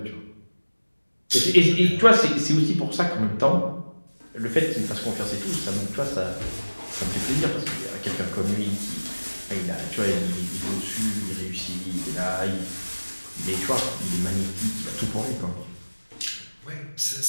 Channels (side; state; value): both; inverted; correlation -1.00